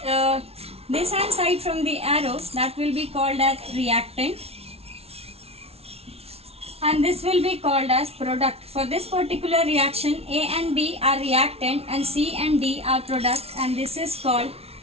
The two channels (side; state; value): left; late; 0.30 ms